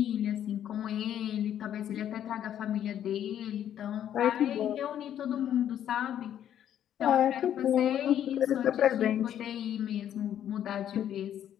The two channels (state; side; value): quieter; right; 10.4 dB